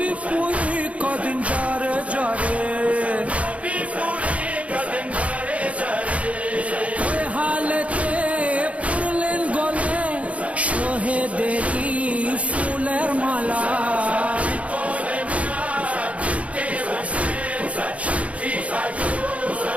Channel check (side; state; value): left; late; 0.065 ms